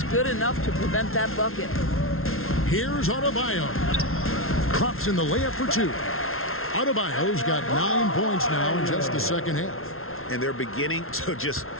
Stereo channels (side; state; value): right; late; 0.62 ms